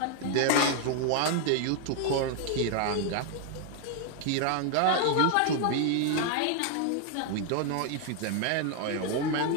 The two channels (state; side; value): different; both; correlation 0.00